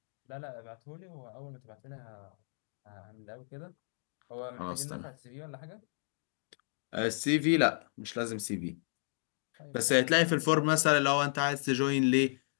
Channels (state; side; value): silent; right; digital silence